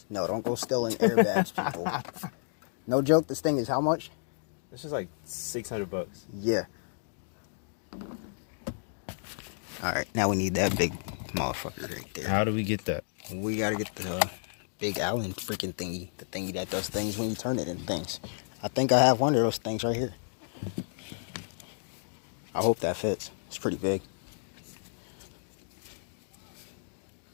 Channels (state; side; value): silent; right; digital silence